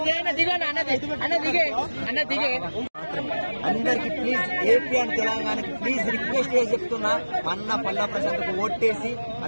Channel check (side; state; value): both; inverted; correlation -1.00